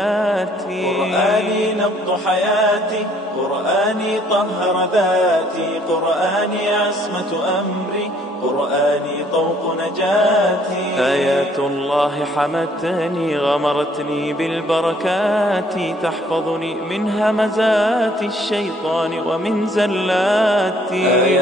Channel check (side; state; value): both; normal; correlation 0.62